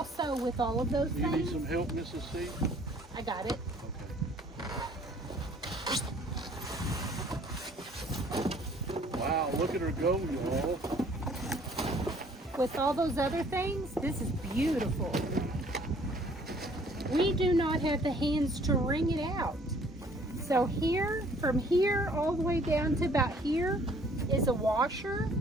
with all of those Do you things. need some help, Mrs. C? I got it. Okay. Wow, look at her go, y'all. with all those other things, this is beautiful. We do not have the hands to wring it out. So here, from here all the way down to about here is a washer.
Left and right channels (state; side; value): normal; both; correlation 0.57